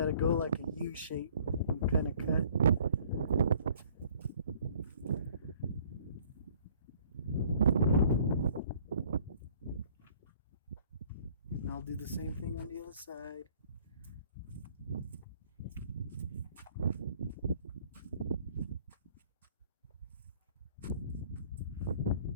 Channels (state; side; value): inverted; both; correlation -0.56